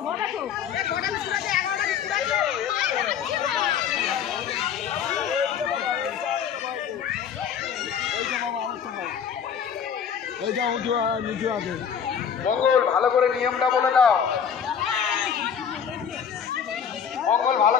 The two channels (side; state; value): right; quieter; 7.7 dB